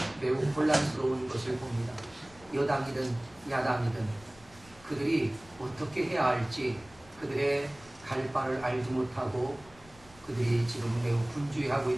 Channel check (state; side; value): noise; left; rumble, 24 dB below the sound